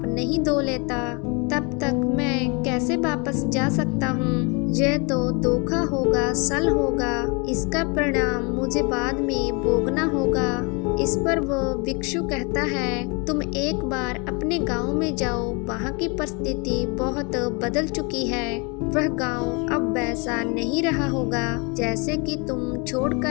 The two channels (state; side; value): quieter; right; 31.1 dB